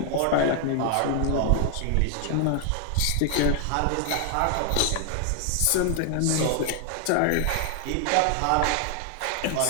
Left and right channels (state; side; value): different; both; correlation 0.00